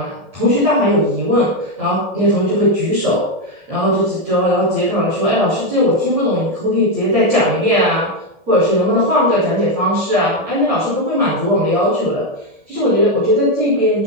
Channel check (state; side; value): late; left; 1.7 ms